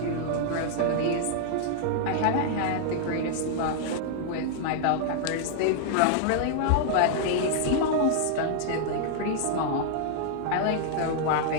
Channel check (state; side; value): different; both; correlation -0.01